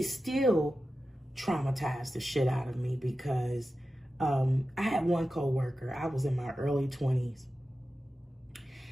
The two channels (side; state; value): both; normal; correlation 0.93